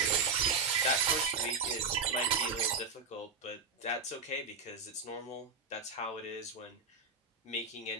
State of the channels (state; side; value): quieter; left; 4.6 dB